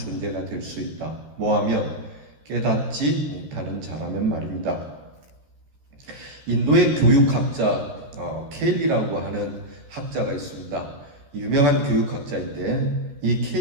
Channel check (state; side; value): late; left; 14 ms